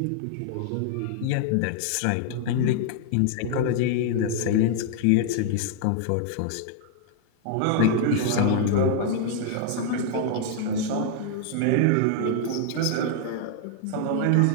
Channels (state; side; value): different; both; correlation 0.00